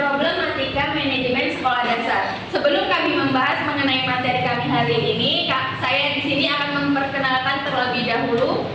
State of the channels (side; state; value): both; identical; correlation 1.00